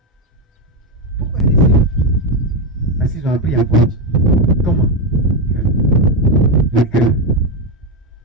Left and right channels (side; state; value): both; normal; correlation 0.08